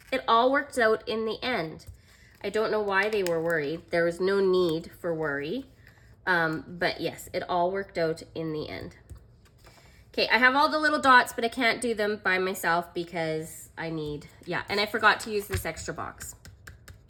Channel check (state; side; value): identical; both; correlation 1.00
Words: it all worked out in the end. I don't know why they were worried. There was no need for worry. But yes, it all worked out in the end. Okay, I have all the little dots, but I can't do them by myself because I need, yeah, and I forgot to use this extra box.